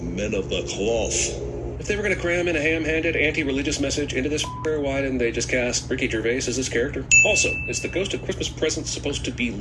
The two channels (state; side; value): identical; both; correlation 1.00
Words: men of the cloth. If they were going to cram in a ham-handed anti-religious message into this, why didn't they just cast Ricky Gervais as this character? Also, is the Ghost of Christmas Present supposed to be